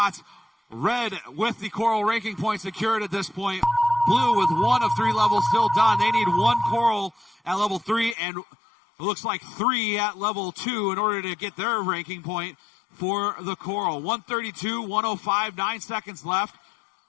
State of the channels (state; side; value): drops out; right; at 8.2 s